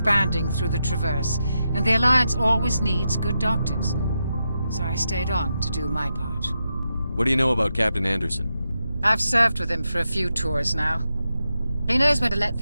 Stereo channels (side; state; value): both; inverted; correlation -0.86